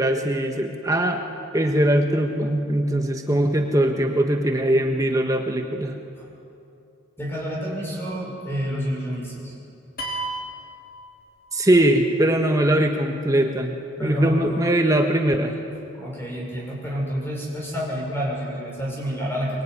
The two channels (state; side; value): normal; both; correlation 0.72